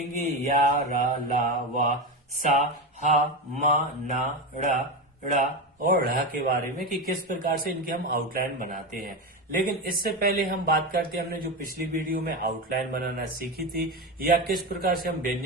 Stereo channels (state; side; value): normal; both; correlation 0.17